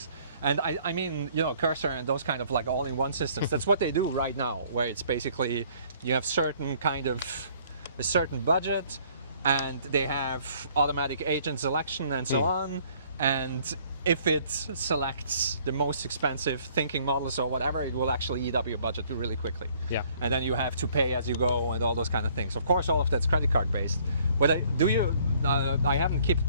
And I mean, you know, Cursor and those kind of like all-in-one systems, that's what they do right now, where it's basically you have a certain budget, and they have automatic agent selection and so on, and if it selects the most expensive thinking models or whatever, it will actually eat up your budget really quickly. Yeah. And then you have to pay as you go and all those kind of things. Of course, all of that's credit card based. But I haven't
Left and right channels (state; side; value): inverted; both; correlation -0.60